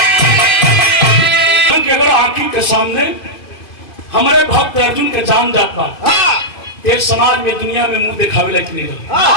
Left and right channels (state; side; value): late; right; 2.5 ms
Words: के सामने हमारे भक्त अर्जुन के जान जात बा। एक समाज में दुनिया में मुंह दिखावे लायक नहीं रहा।